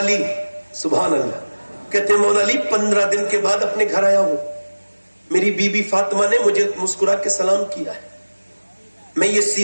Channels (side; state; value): both; inverted; correlation -1.00